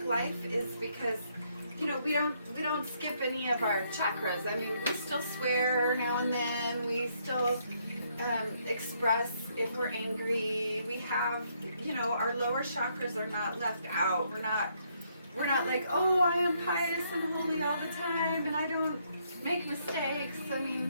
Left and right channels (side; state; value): both; inverted; correlation -0.72